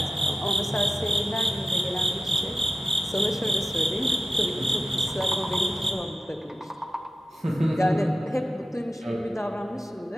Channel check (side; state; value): both; normal; correlation 0.93